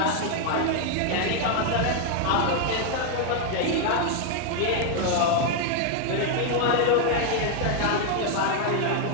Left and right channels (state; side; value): different; both; correlation 0.00